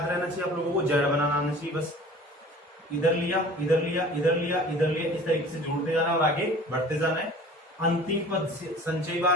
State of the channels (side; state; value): both; normal; correlation 0.45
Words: रहना चाहिए आप लोगों को, Z बनाना आना चाहिए। बस इधर लिया इधर लिया इधर लिया इधर लिया, इस तरीके से जोड़ते जाना और आगे बढ़ते जाना है। अंतिम पद संचयी